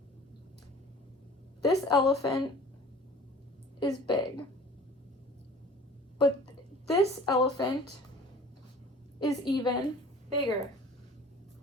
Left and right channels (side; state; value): both; normal; correlation 0.46